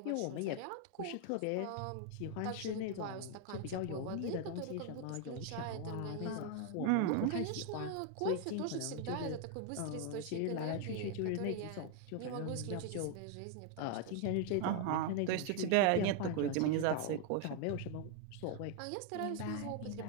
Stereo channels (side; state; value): both; different; correlation 0.00